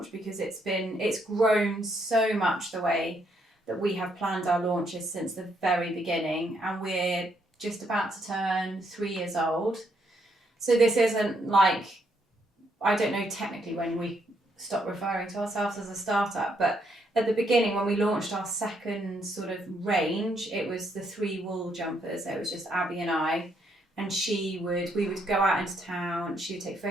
because it's grown so much the way that we have planned our launches since the very beginning, and we're just about to turn 3 years old. So this isn't like, I don't know technically when we stopped referring to ourselves as a startup, but at the beginning when we launched our second sort of range, it was the 3 wool jumpers. It was just Abby and I, and we would go out into town, she would take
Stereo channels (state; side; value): normal; both; correlation 0.74